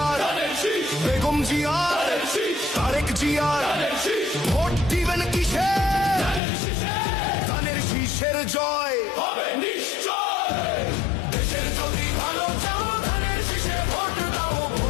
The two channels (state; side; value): drops out; right; at 6.4 s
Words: বেগম জিয়ার, তারেক জিয়ার, ভোট দিবেন কিসে? ধানের শীষের জয় হবে নিশ্চয়। দেশের যদি ভালো চাও ধানের শীষে ভোট দাও,